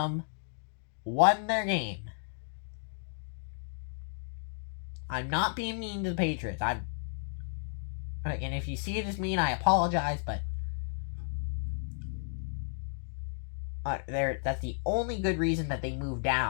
won their game. I'm not being mean to the Patriots. And if you see it as mean, I apologize, but that's the only good reason that they moved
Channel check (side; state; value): right; silent; digital silence